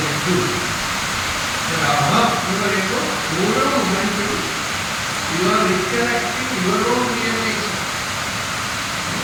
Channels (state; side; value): identical; both; correlation 1.00